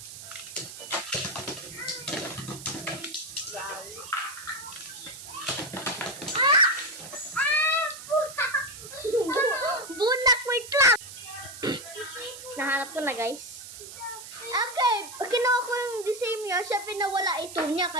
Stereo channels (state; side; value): noise; right; hiss, 13 dB below the sound